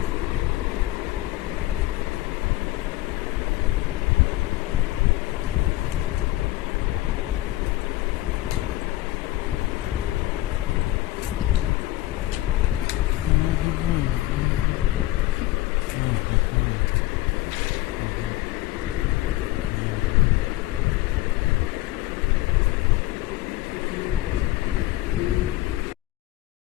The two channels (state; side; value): quieter; right; 16.8 dB